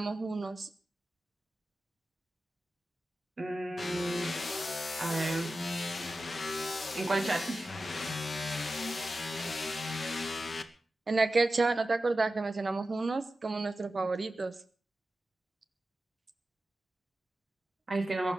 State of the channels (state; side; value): normal; both; correlation 0.93